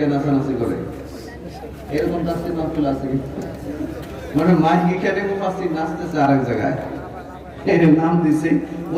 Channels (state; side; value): identical; both; correlation 1.00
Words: নাচানাচি করে, এরকম তাফসির মাহফিল আছে। মানে মাইক এখানে, মুফাসসির নাচতেছে আরেক জায়গায়, এর নাম দিছে